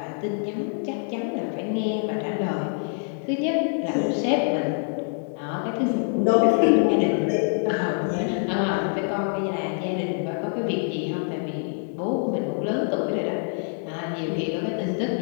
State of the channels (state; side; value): silent; right; 61 dB below the other